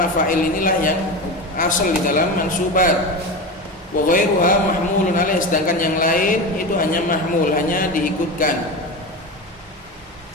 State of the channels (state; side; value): normal; both; correlation 0.24